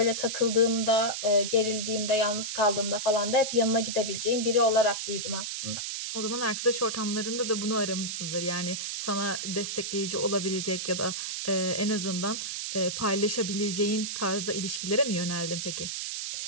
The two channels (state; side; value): noise; right; hiss, 4 dB below the sound